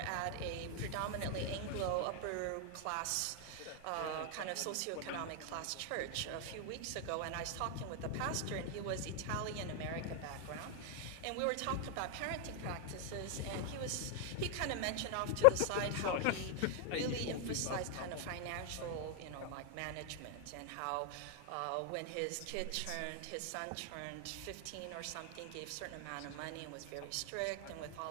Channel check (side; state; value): both; different; correlation 0.00